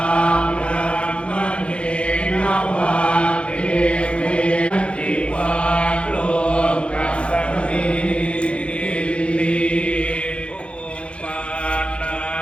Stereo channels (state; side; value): late; right; 0.059 ms